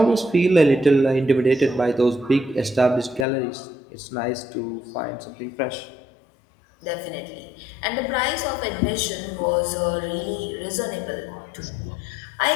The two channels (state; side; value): drops out; right; at 3.2 s